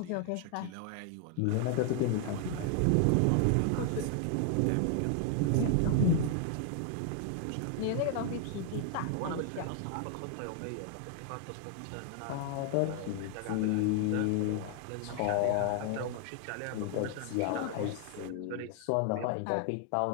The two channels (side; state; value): both; different; correlation 0.00